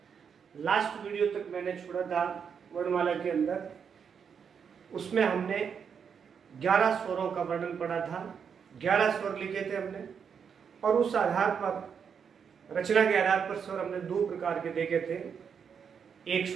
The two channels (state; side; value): quieter; left; 6.9 dB